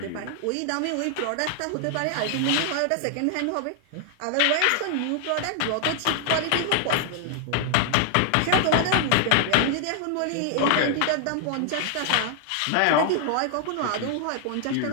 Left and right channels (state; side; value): different; both; correlation 0.00